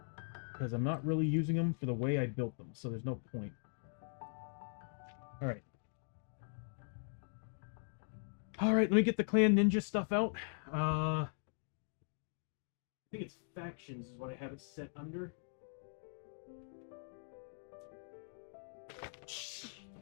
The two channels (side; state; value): right; silent; digital silence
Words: I'm not really using them for the way I built them, so there's no point. Alright. Alright, let me get the Clan Ninja stuff out. I think it's Factions is what I have it set under.